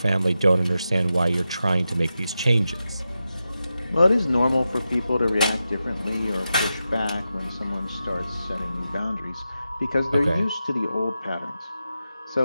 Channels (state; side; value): inverted; both; correlation -0.90